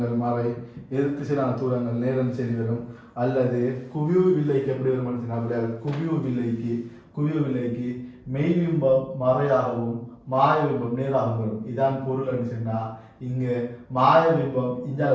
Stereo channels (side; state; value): both; identical; correlation 1.00